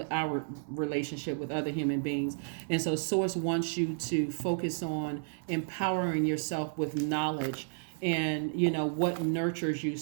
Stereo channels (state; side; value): silent; left; digital silence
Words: relationship with other human beings. And so Source wants you to focus on empowering yourself with knowledge, and what nurtures you,